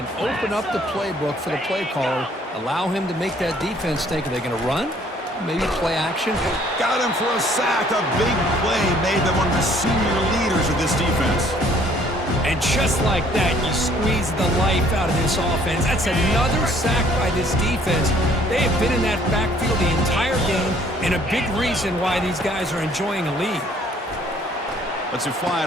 open up the playbook for the play caller, allow him to make that defense think, are they going to run? Maybe play action. Got him for a sack. A big play made by one of the senior leaders of this defense. And just like that, you squeeze the life out of this offense. That's another sack by this defense. They have been in that backfield the entire game, and a big reason why these guys are enjoying a lead. Let's it fly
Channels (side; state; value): both; normal; correlation 0.60